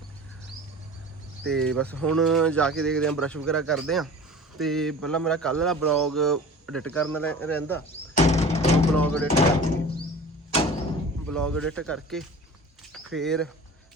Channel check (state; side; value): normal; both; correlation 0.39